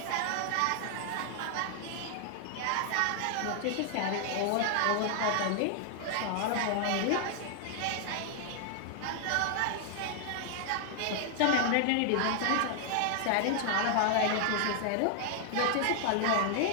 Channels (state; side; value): different; both; correlation 0.00